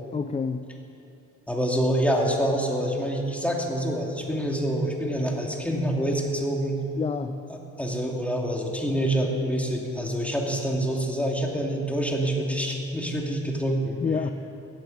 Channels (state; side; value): normal; both; correlation 0.64